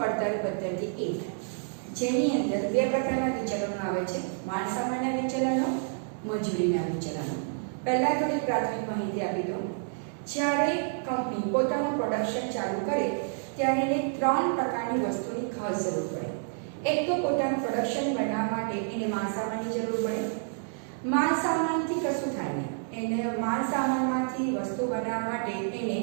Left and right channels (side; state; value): left; silent; digital silence